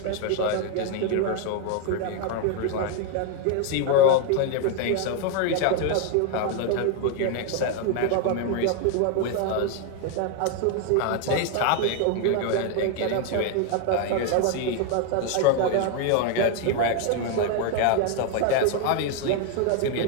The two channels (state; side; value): different; both; correlation 0.01